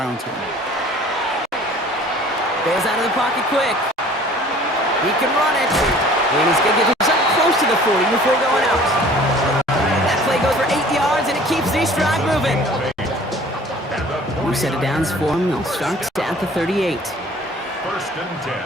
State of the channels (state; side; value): normal; both; correlation 0.50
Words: him. Bails out of the pocket quick. He can run it. And he's going to get himself close to the 40 before going out. That play goes for 8 yards, and it keeps the drive moving. New set of downs for him. They'll start at the 38. 1st and 10